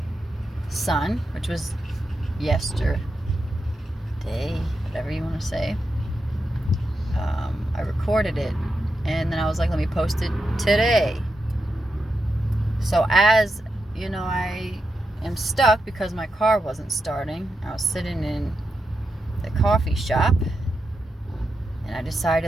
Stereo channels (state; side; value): normal; both; correlation 0.87